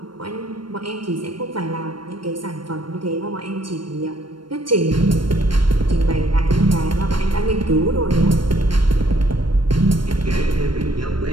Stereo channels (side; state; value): left; late; 0.72 ms